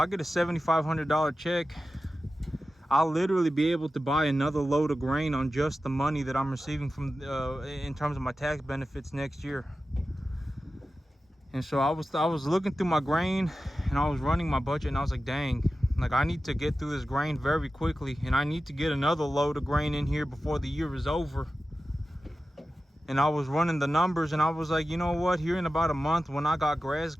get a $7,500 check, I'll literally be able to buy another load of grain on just the money that I'm receiving from in terms of my tax benefits next year. And so I was looking through my grain and I was running my budget, and I was like, dang, like I need to get through this grain very quickly, and I need to get another load of grain in here before the year is over. And I was running the numbers and I was like, you know what, here in about a month when I got grass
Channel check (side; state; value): both; normal; correlation 0.94